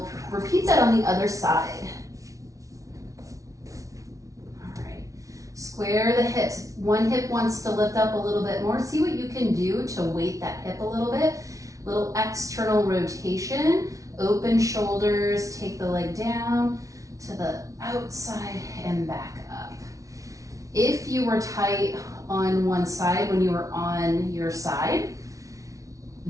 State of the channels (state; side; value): late; left; 0.16 ms